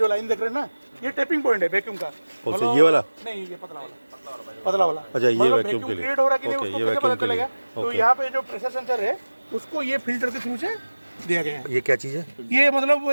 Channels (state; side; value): inverted; both; correlation -1.00